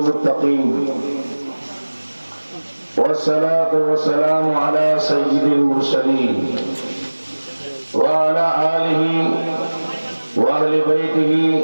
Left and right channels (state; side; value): inverted; both; correlation -1.00